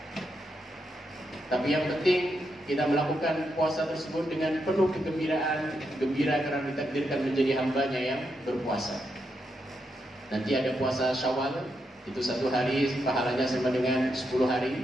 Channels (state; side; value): normal; both; correlation 0.83